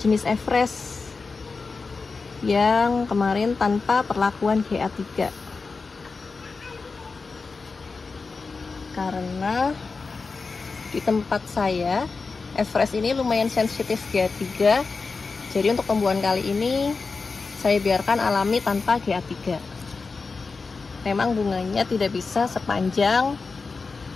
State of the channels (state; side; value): quieter; right; 4.4 dB